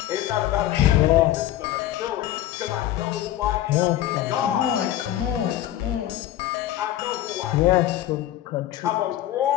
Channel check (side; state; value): right; quieter; 13.2 dB